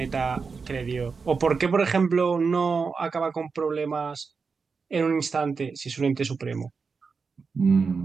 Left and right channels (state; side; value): quieter; left; 5.0 dB